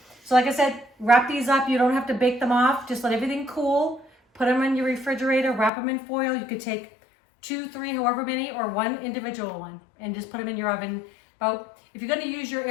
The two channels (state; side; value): drops out; right; at 5.7 s